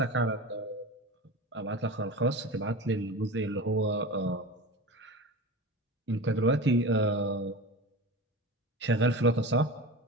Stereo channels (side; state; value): both; normal; correlation 0.30